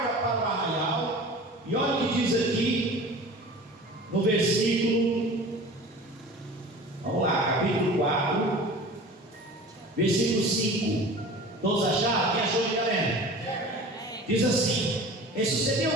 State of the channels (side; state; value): both; normal; correlation 0.39